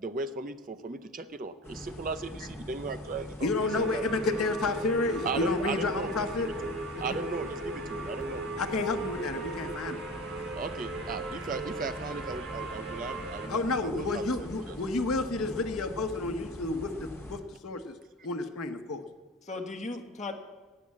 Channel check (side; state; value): both; normal; correlation 0.33